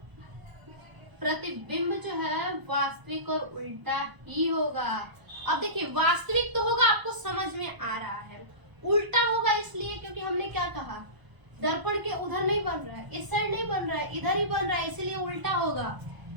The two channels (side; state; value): left; late; 1.0 ms